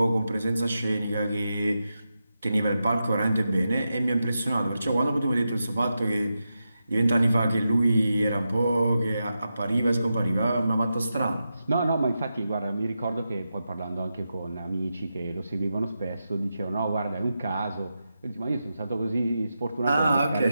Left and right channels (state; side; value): inverted; both; correlation -0.89